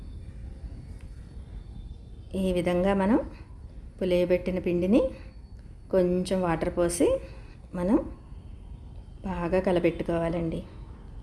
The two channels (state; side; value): identical; both; correlation 1.00